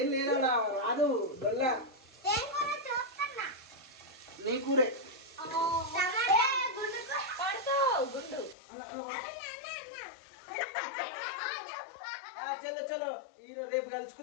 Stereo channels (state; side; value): drops out; right; at 8.6 s